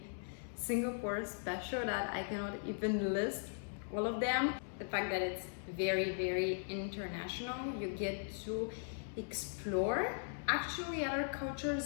Singapore special that I cannot even list all of them. The fact that it's very international, you get to explore actually other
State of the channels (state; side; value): silent; right; digital silence